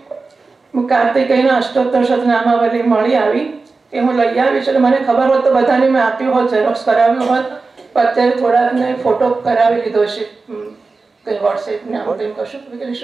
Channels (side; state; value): left; quieter; 4.0 dB